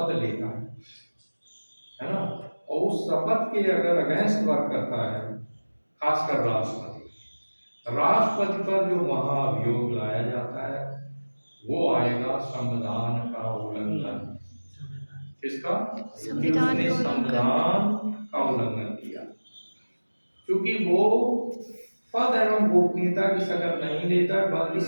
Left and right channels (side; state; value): both; inverted; correlation -1.00